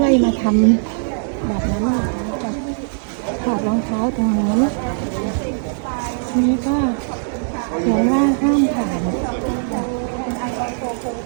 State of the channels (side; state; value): left; silent; 66 dB below the other